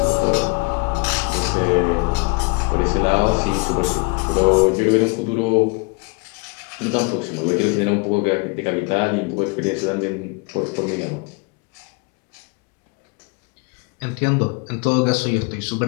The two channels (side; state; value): right; quieter; 30.3 dB